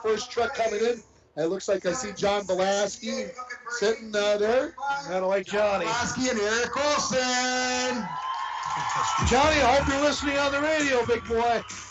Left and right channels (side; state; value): both; identical; correlation 1.00